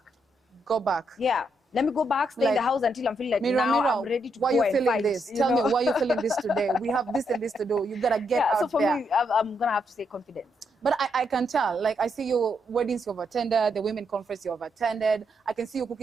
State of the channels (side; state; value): both; normal; correlation 0.78